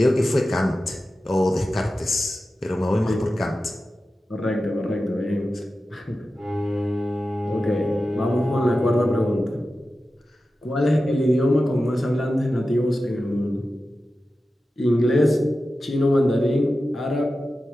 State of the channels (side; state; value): both; normal; correlation 0.93